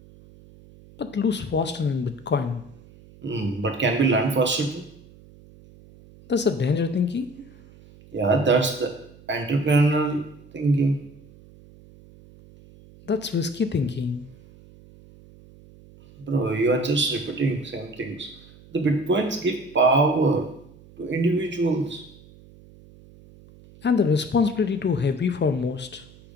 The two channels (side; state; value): right; noise; hum, 23 dB below the sound